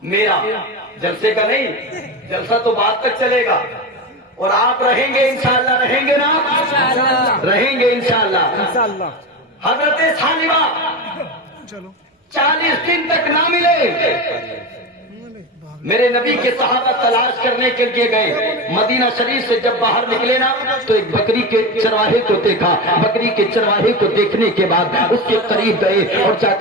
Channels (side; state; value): both; normal; correlation 0.21